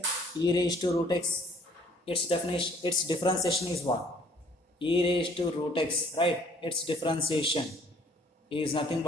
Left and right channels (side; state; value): both; normal; correlation 0.60